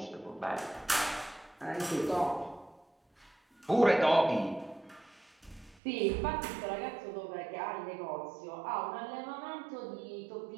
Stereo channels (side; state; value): left; drops out; at 5.8 s